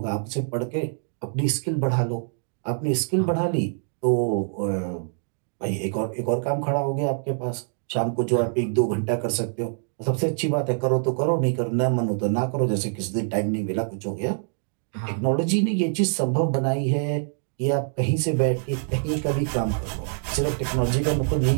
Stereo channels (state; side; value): silent; left; digital silence